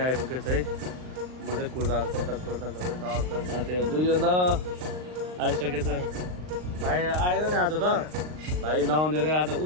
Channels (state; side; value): late; left; 39 ms